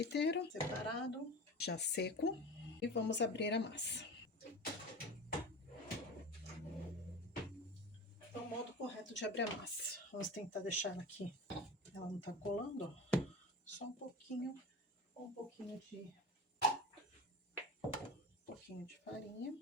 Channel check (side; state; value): both; normal; correlation 0.31